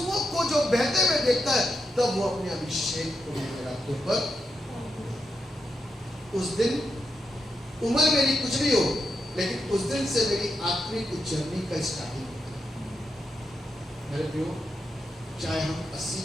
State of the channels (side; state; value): both; normal; correlation 0.84